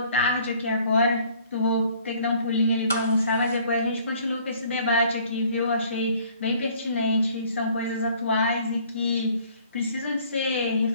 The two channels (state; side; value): inverted; both; correlation -0.58